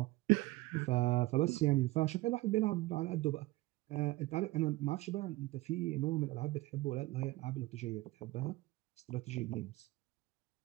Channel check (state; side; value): quieter; left; 19.5 dB